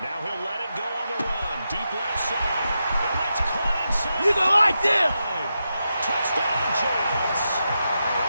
Now he'll let it go on the run. Deep left side. And that's caught inside. You don't like this. Touchdown, Giants.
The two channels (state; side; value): inverted; both; correlation -0.87